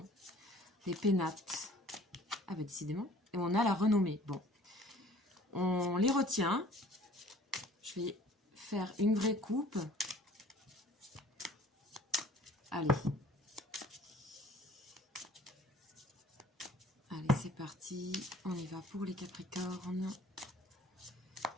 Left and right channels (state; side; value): normal; both; correlation 0.51